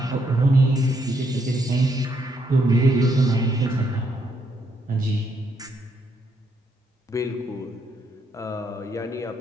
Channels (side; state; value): both; normal; correlation 0.75